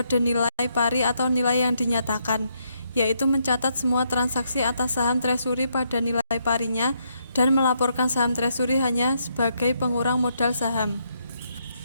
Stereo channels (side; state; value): both; inverted; correlation -0.76